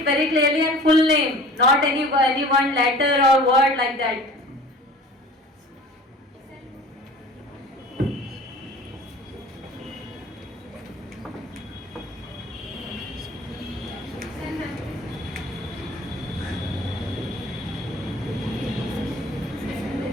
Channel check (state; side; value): normal; both; correlation 0.44